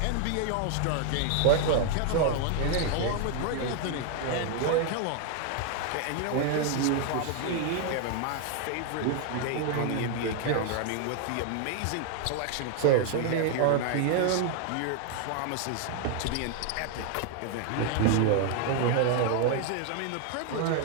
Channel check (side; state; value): both; different; correlation 0.00